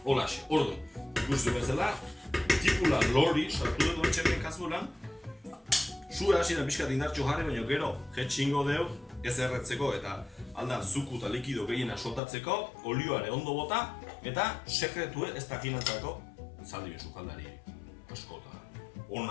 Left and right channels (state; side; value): drops out; right; at 12.2 s